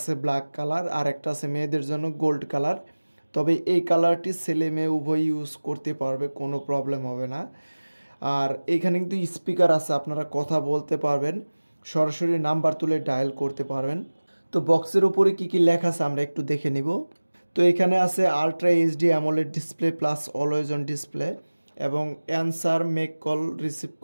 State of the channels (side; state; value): both; inverted; correlation -1.00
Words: ব্ল্যাক কালার, আর একটা আছে মেয়েদের জন্য গোল্ড কালার। তবে এই কালারটি ছেলে মেয়ে উভয় ইউজ করতে পারবে, কোনো প্রবলেম হবে না। আর এখানে কিন্তু স্পিকার আছে, আপনারা কথা বলতে পারবেন, সরাসরি নাম্বার তুলে ডায়াল করতে পারবেন। তো বক্সের উপরে কি কি লেখা আছে আমরা একটু দেখে নিব। তো এখানে আছে ultra HD AMOLED display plus always on display এবং answer, make call, receive